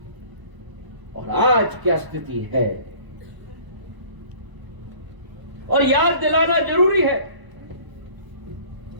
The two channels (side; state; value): left; late; 1.0 ms